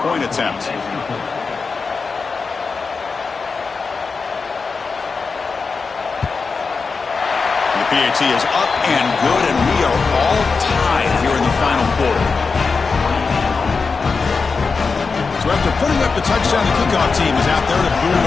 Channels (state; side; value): quieter; right; 4.7 dB